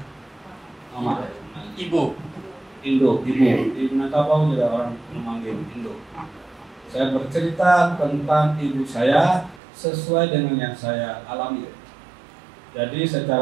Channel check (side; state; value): left; drops out; at 9.6 s